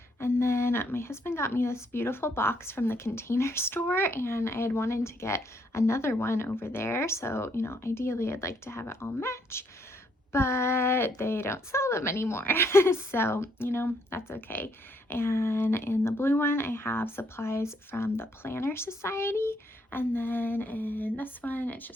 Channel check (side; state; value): both; normal; correlation 0.70